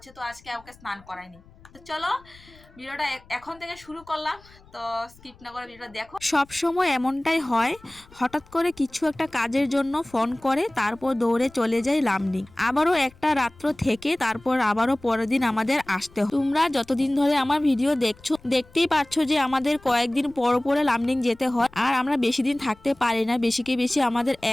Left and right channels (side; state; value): left; noise; rumble, 26 dB below the sound